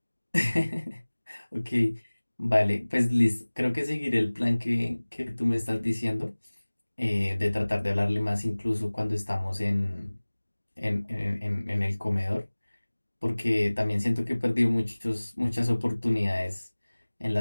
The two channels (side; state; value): both; inverted; correlation -1.00